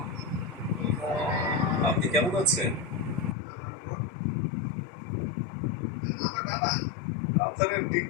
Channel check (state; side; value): drops out; right; at 3.4 s